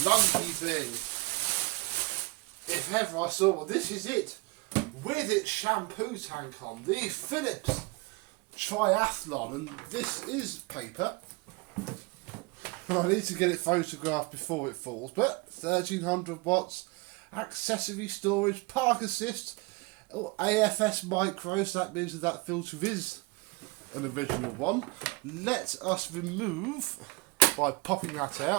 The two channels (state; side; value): quieter; left; 26.3 dB